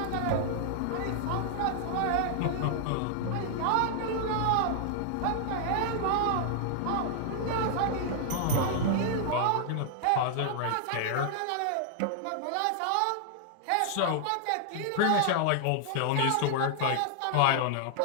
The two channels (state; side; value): different; both; correlation -0.01